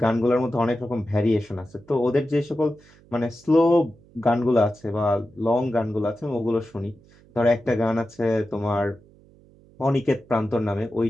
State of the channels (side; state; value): right; noise; hum, 27 dB below the sound